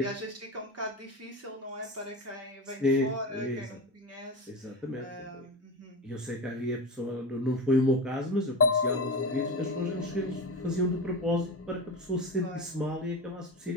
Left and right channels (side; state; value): both; normal; correlation 0.22